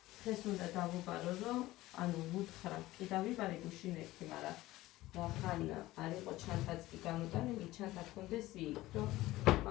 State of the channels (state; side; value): quieter; right; 17.4 dB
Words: დღეს უნდა დავუბარო, რომ ანუ ვუთხრა, კი დავიბარე გუშინ ერთი, მაგრამ რახან არ იყო ჩანთაც კი გამოტანილი, ჩანთა გქონდეს იქ, რომ